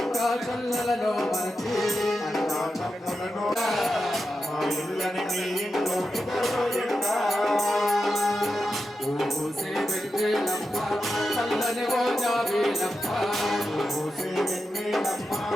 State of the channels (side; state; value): both; normal; correlation 0.89